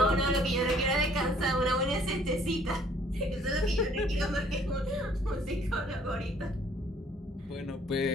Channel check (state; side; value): normal; both; correlation 0.60